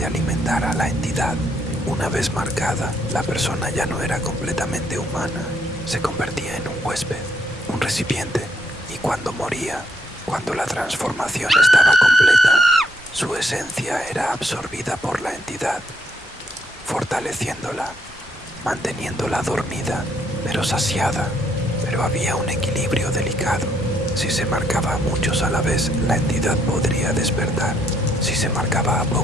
alimentar a la entidad. Una vez marcada, la persona ya no era completamente humana. Se convertía en un huésped, un recipiente, y cuando moría, cuando la transformación estaba completa, su esencia era absorbida por la entidad, fortaleciéndola, manteniéndola dormida, pero saciada. Pero había un equilibrio delicado. Si se marcaba a muchos a la vez, la entidad podría despertar. Si se marcaba a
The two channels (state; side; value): normal; both; correlation 0.71